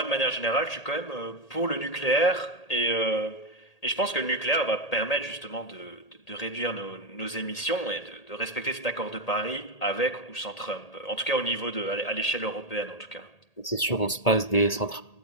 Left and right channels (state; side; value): late; right; 1.8 ms